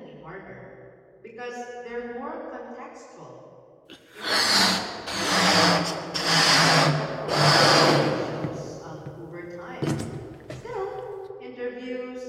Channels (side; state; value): both; identical; correlation 1.00